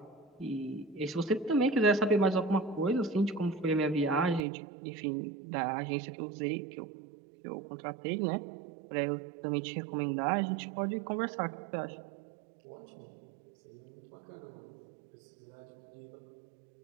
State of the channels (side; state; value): left; drops out; at 4.4 s